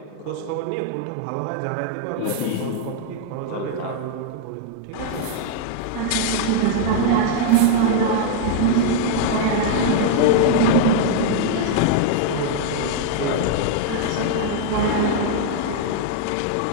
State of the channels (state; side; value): different; both; correlation 0.00